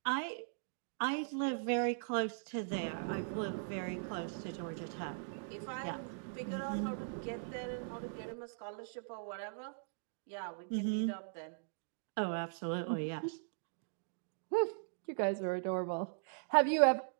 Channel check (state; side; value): silent; left; digital silence